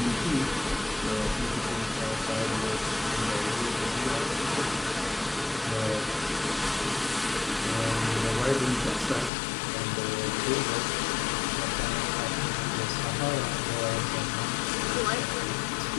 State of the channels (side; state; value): right; drops out; at 9.3 s